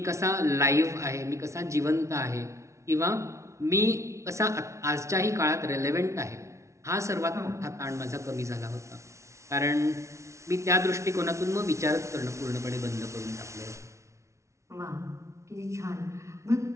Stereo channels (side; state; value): left; late; 0.14 ms